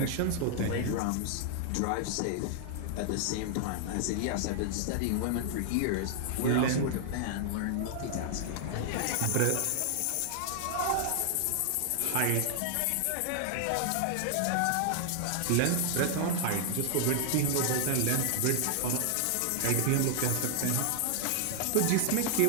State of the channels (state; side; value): different; both; correlation 0.00